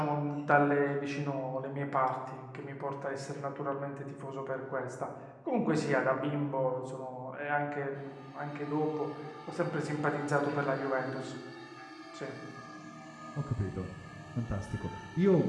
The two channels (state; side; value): identical; both; correlation 1.00